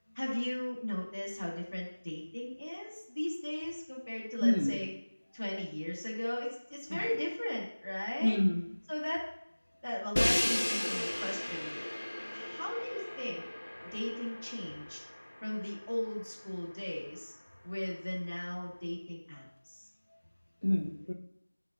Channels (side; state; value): both; inverted; correlation -1.00